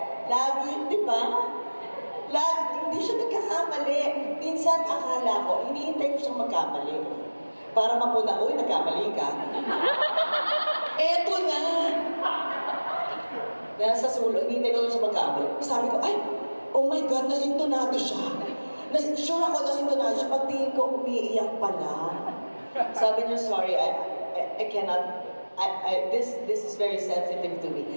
Lagi, di ba? Hindi siya nagkakamali. Minsan akala ko, hinihintay ko siyang magkamali. Para mapuna, uy, nagkamali ka. Eto na! Nasa sulo, hinihintay ko siya magkamali. Sabi ko, ay, oh my God, nasintonado siya. Sure ako nasintonado siya. Pagtingin ko, umiiyak pala. Sabi niya, sorry, I cannot. This is very sensitive to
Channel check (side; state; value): both; inverted; correlation -1.00